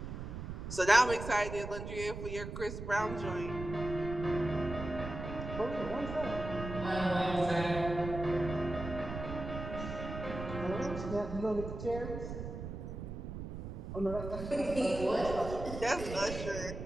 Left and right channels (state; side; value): noise; right; rumble, 7 dB below the sound